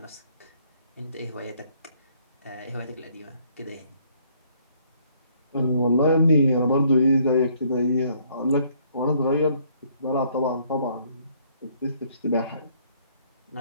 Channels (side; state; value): both; inverted; correlation -0.65